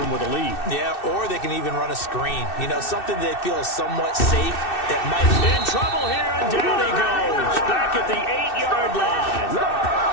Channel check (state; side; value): late; right; 2.6 ms